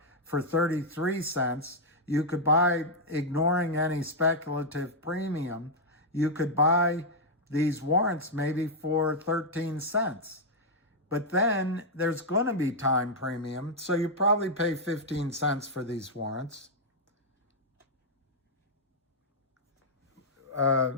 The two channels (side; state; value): both; normal; correlation -0.04